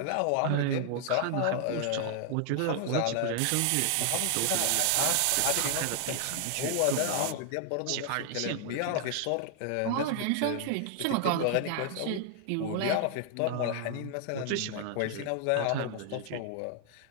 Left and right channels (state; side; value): different; both; correlation 0.00